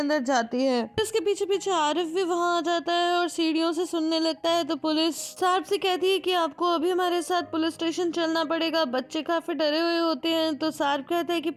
जाती है। इसके पीछे पीछे आरिफ भी वहाँ आ जाता है और सीढ़ियों से सुनने लगता है। तो पुलिस सारप से कहती है कि आपको अभी हमारे साथ पुलिस स्टेशन चलना पड़ेगा। बच्चे काफी डरे हुए होते हैं। तो सारप कहता है कि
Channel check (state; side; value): identical; both; correlation 1.00